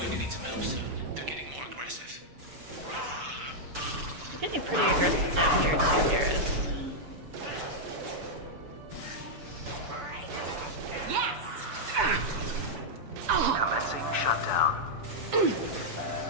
to need some help soon. They're getting more aggressive. You're getting pretty aggressive down here too, Garrus. Commencing shutdown.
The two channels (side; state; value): left; late; 6.9 ms